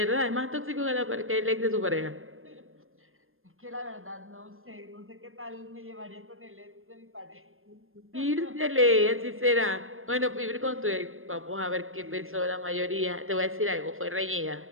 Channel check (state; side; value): late; left; 0.60 ms